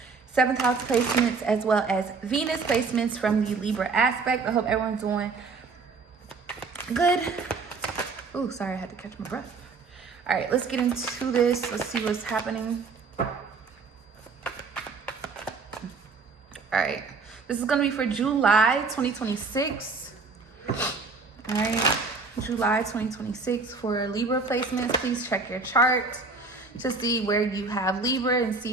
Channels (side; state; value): left; quieter; 4.3 dB